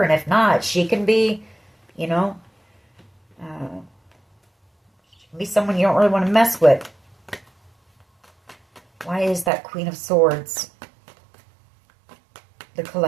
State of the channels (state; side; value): drops out; left; at 9.5 s